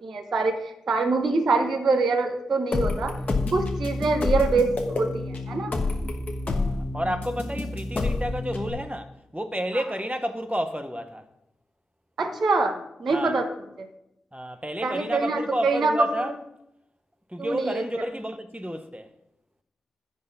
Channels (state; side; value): normal; both; correlation 0.83